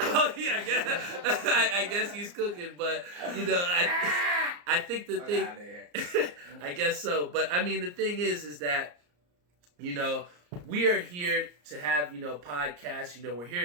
yeah, I guess he's cooking, but I think the thing, I guess so. But I mean, the thing is that we are here to have, podcasts, we're here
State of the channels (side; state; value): left; late; 34 ms